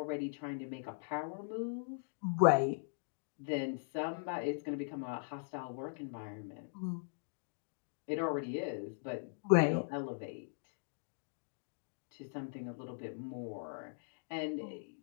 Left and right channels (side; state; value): right; silent; digital silence